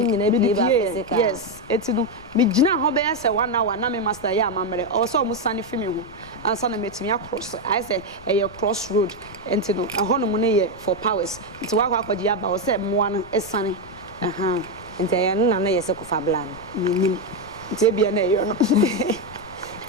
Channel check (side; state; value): left; noise; rumble, 19 dB below the sound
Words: nyina bi ba physical yes eti no me gina ho be say 1 hour na me master ya amamre o so mo sane fi me ho ansa na metimi across I say cross road enti no ho no mo ne ye for powers enti wa akwaji aba o say moa no esane aha enti ya no na ye se kofa bla no nim enti bia na ye no